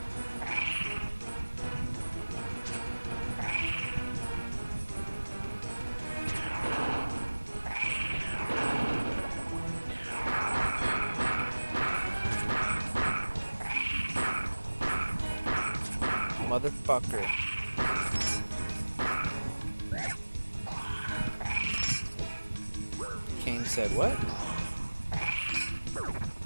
Motherfucker. Kane said what?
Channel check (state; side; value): inverted; both; correlation -1.00